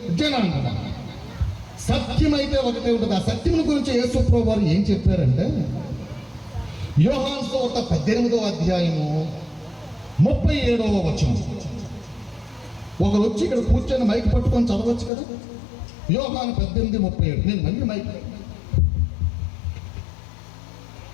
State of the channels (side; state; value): right; drops out; at 15.1 s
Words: జనాంగం, సత్యమైతే ఒకటే ఉంటుంది. ఆ సత్యం గురించి యేసు ప్రభువు వారు ఏం చెప్పారంటే, యోహాను సువార్త 18వ అధ్యాయము 37వ వచనం. ఒకరు వచ్చి ఇక్కడ కూర్చొని మైక్ పట్టుకొని చదవచ్చు కదా. యోహాను 18:37. నేను మళ్ళీ మైక్